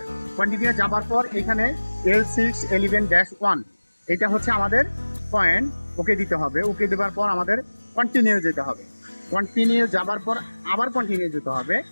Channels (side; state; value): both; inverted; correlation -1.00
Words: কন্টিনিউ যাবার পর এখানে L611-1 এটা হচ্ছে আমাদের পয়েন্ট, ওকে দিতে হবে। ওকে দেওয়ার পর আমাদের কন্টিনিউ যেতে হবে। কন্টিনিউ যাবার পর আবার কন্টিনিউ যেতে হবে।